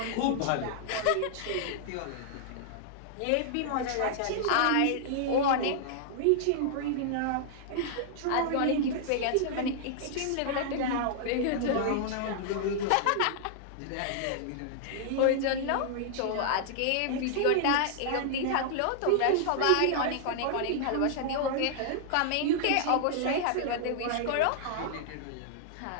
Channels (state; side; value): different; both; correlation -0.01